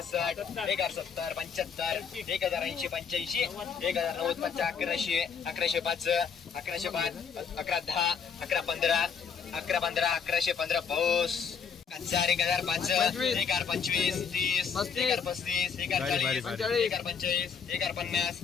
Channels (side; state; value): right; quieter; 6.6 dB